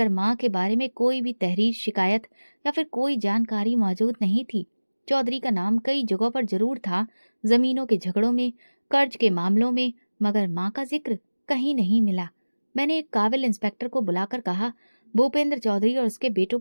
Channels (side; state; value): both; inverted; correlation -1.00